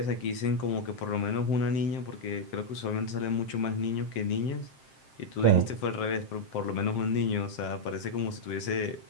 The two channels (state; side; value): late; right; 7.6 ms